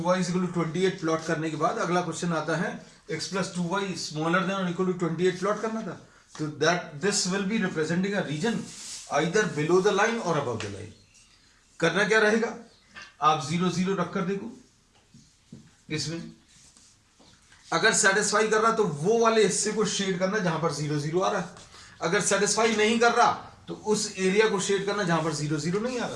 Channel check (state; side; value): identical; both; correlation 1.00